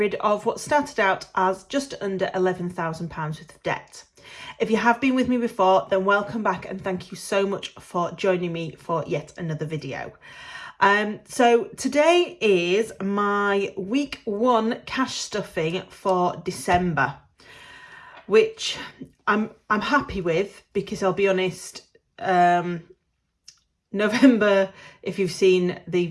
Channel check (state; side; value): identical; both; correlation 1.00